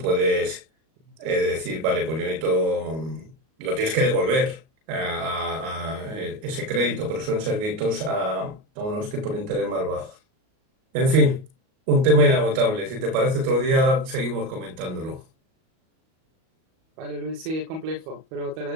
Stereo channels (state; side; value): late; left; 38 ms